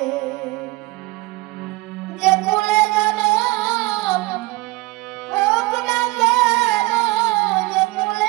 যে কুলে জনম হোক না কেন, যে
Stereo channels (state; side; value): quieter; left; 21.7 dB